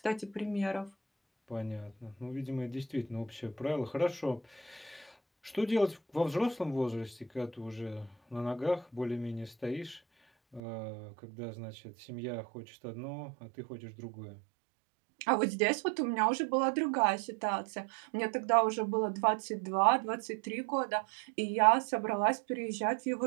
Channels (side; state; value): left; drops out; at 10.6 s